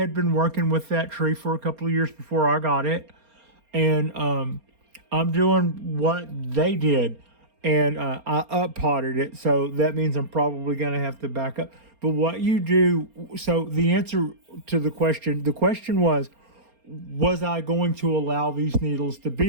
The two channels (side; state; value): left; late; 4.3 ms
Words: been working with that tree for a couple of years before I got it. And I'm doing what they did. And I up-potted it, so that means I'm probably going to have to back up. But what you do, so the answer to the question was I going to allow these needles to